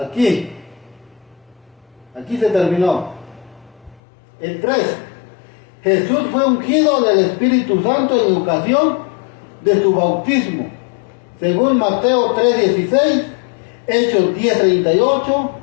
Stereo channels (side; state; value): right; drops out; at 4.0 s